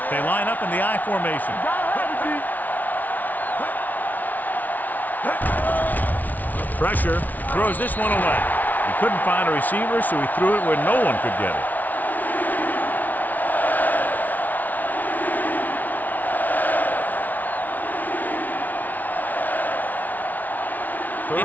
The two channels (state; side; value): late; right; 0.078 ms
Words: They line up in the I formation. Pressure, throws this one away. He couldn't find a receiver, so he threw it where no one could get it.